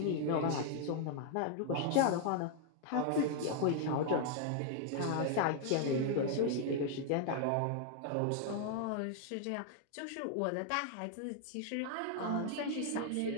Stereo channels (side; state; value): both; different; correlation 0.00